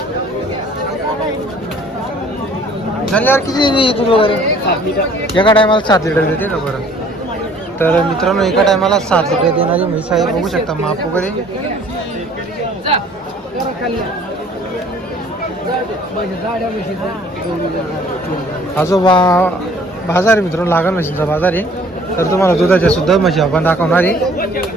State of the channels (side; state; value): both; normal; correlation 0.54